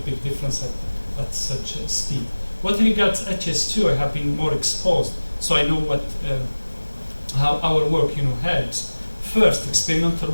big difference at such a speed. What regards HS2, I have been more exposed, so I know how our work helps. First, experimental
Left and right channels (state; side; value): inverted; both; correlation -1.00